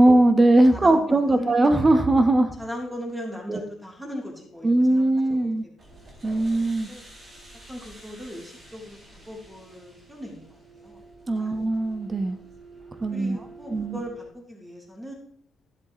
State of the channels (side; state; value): both; normal; correlation 0.95